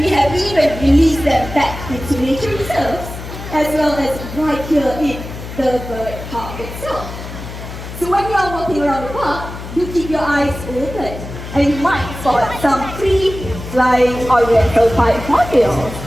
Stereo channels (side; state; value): left; noise; hum, 11 dB below the sound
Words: released them back into nature reserves, as well as right here in the bird park itself. So when you are walking around the park, do keep your eyes open, and you might spot some free flying Oriental white hornbills.